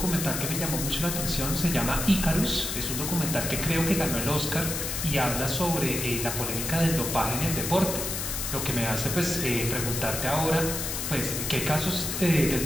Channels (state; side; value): noise; left; hiss, 3 dB below the sound